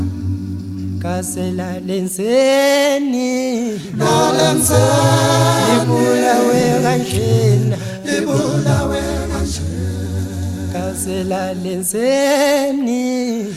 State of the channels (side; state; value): both; identical; correlation 1.00